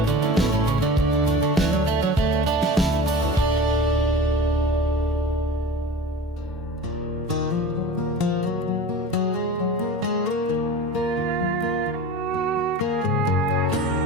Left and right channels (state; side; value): normal; both; correlation 0.36